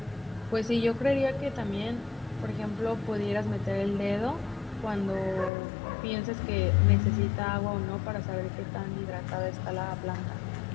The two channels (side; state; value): right; drops out; at 5.5 s